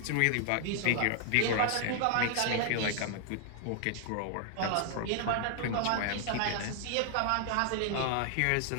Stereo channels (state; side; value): different; both; correlation 0.00